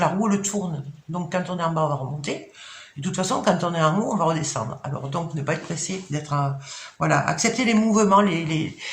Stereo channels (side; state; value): both; identical; correlation 1.00